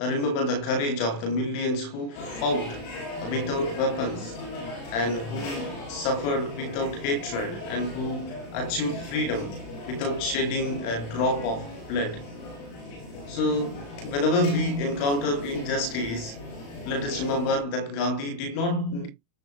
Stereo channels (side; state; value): right; late; 35 ms